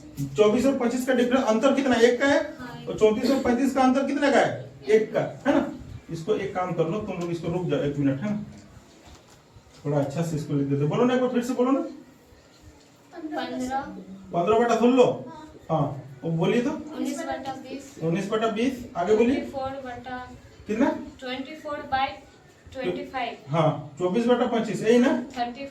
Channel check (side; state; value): both; identical; correlation 1.00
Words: 24 और 25 का डिफरेंस अंतर कितना, 1 का है, और 34 और 35 का अंतर कितने का है, 1 का, है ना। इसको एक काम कर लो तुम लोग, इसको रुक जाओ 1 मिनट है ना, थोड़ा अच्छा से इसको लिख देते। बोलो ना एक बार फिर से बोलो ना। 15/16। हाँ वो बोलिए तो 19/20। 19/20। आगे बोलिए 24/। कितना? 24/25। हाँ 24/25 यही ना।